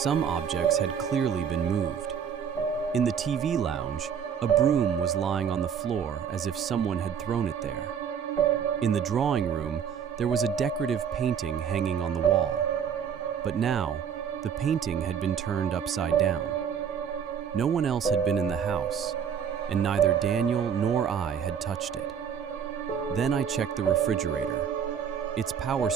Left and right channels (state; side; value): quieter; left; 7.7 dB